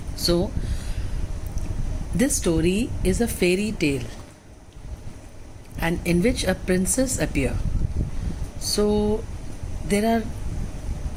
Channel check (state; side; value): identical; both; correlation 1.00